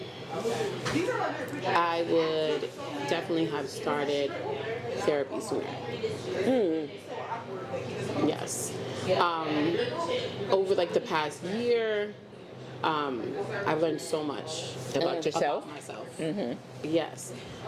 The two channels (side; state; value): both; identical; correlation 1.00